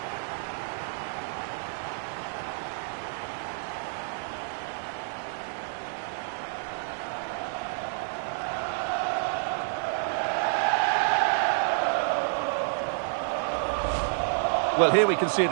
Well, here we can see it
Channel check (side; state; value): left; silent; digital silence